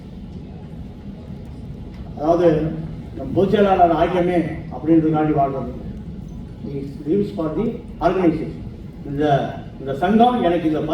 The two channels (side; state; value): both; identical; correlation 1.00